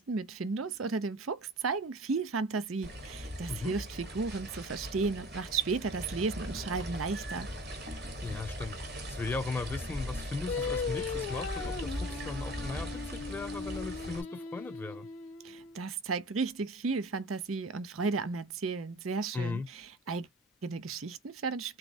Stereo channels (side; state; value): both; normal; correlation 0.43